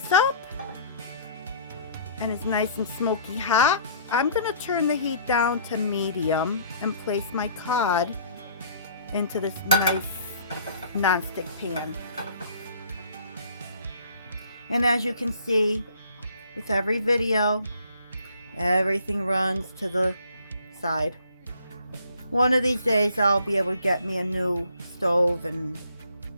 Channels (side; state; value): both; inverted; correlation -0.57